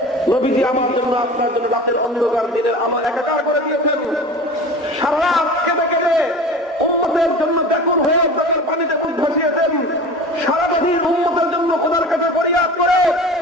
নবীজি আমার জন্য আপনার জন্য রাতের অন্ধকার দিনের আমার একাকার করে দিয়েছেন। সারা রাত কেঁদে কেঁদে উম্মতের জন্য ব্যাকুল হয়ে চোখের পানিতে মুখ ভাসিয়েছেন। সারাদিন উম্মতের জন্য খোদার কাছে ফরিয়াদ করে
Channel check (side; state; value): both; normal; correlation 0.36